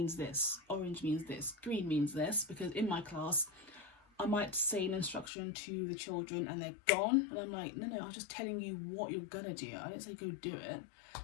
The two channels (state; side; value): drops out; right; at 5.3 s